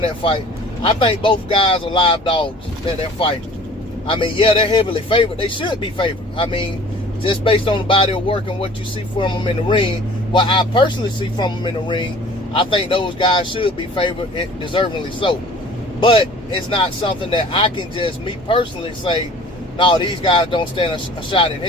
that fight. I think both guys are live dogs that they're fighting. I mean, yeah, they're heavily favored. They should be favored. I mean, just based on the body of work and what you see from them in the ring, what I personally see from them in the ring, I think those guys should be favored, and deservingly so. But it's not something that I can just, me personally, say, no, these guys don't stand a shot in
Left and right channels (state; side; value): normal; both; correlation 0.48